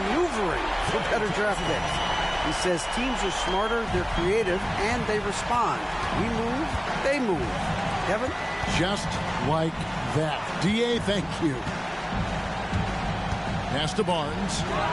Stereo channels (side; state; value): both; identical; correlation 1.00